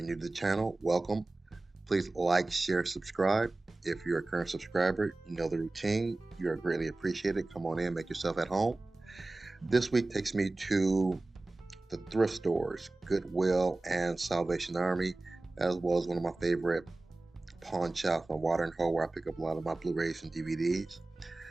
new to the channel, welcome. Please like, share, subscribe. If you're a current subscriber, you know the routine. You are greatly appreciated. Come on in, make yourself at home. This week takes me to the thrift stores, Goodwill and Salvation Army, as well as one of my favorite pawn shops on Water and Hole, where I pick up a lot of my Blu-rays and DVDs.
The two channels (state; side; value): quieter; left; 3.0 dB